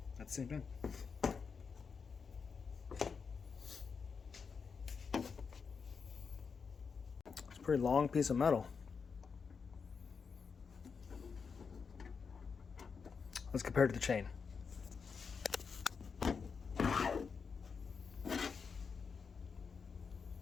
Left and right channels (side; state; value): right; quieter; 5.6 dB